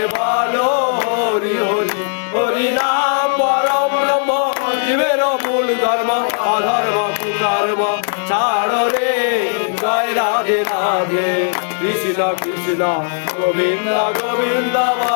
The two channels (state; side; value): silent; right; 61 dB below the other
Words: বলো হরি হরি হরি নাম পরম ব্রহ্ম জীবের মূল ধর্ম অধর্ম কুধর্ম ছাড়ো রে জয় রাধে রাধে কৃষ্ণ কৃষ্ণ গোবিন্দ গোবিন্দ